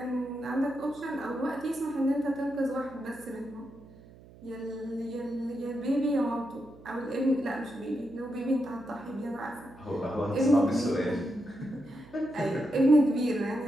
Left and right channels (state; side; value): noise; right; hum, 21 dB below the sound